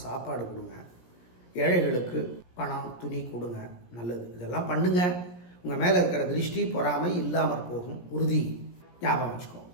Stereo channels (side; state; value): right; late; 17 ms